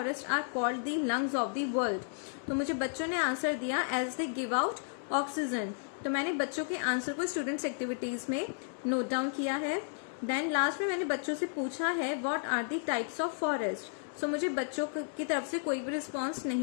are called the lungs of the world, तो मुझे बच्चों ने आंसर दिया as they give out oxygen. तो मैंने बच्चों के आंसर को स्टूडेंट्स एक्टिविटीज में नोट डाउन किया है। देन लास्ट में मैंने बच्चों से पूछा है what are the types of forest, so मुझे बच्चों की तरफ से कोई भी रिस्पॉन्स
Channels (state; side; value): silent; right; 56 dB below the other